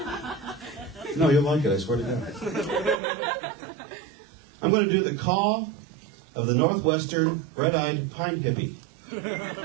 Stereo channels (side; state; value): left; drops out; at 3.0 s